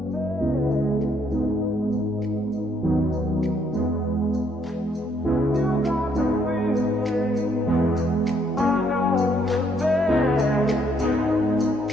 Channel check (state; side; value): normal; both; correlation 0.70